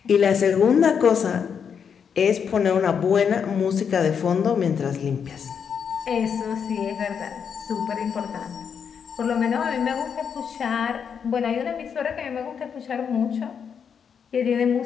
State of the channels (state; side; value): quieter; right; 7.1 dB